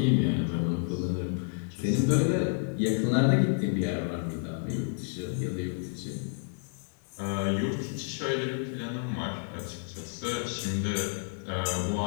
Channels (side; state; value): right; silent; digital silence